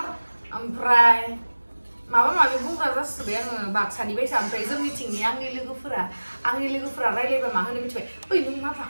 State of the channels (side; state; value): both; inverted; correlation -1.00